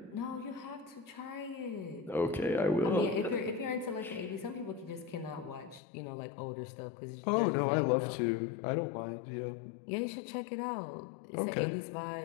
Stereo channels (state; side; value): drops out; right; at 5.8 s